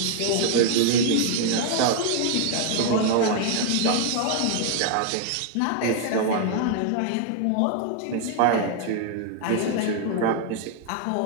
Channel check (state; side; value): different; both; correlation 0.00